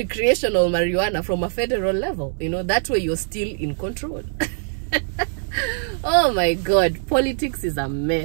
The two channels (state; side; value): silent; left; digital silence